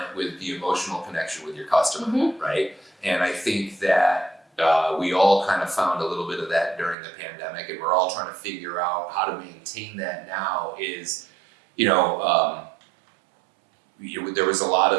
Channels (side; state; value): left; drops out; at 7.0 s